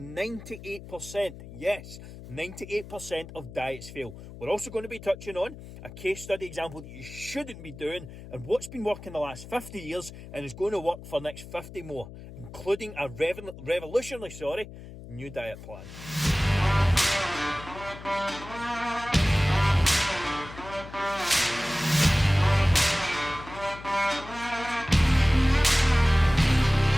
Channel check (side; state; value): left; noise; hum, 15 dB below the sound